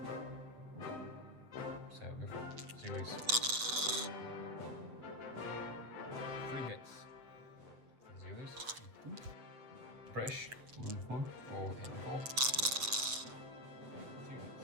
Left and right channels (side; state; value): left; late; 7.7 ms